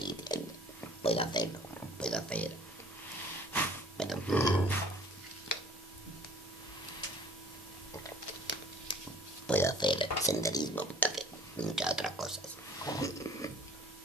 yendo, puedo hacerlo, puedo hacer... Bueno, puedo hacer senderismo, puedo hacer muchas otras cosas.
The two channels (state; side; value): normal; both; correlation 0.52